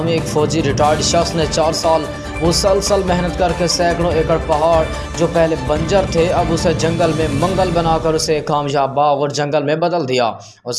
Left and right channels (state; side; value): identical; both; correlation 1.00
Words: एक फ़ौजी रिटायर्ड शख्स ने 4 साल मुसलसल मेहनत करके सैकड़ों एकड़ पहाड़ जो पहले बंजर थे अब उसे जंगल में मंगल बनाकर उसे कामयाब बाग और जंगल में बदल दिया।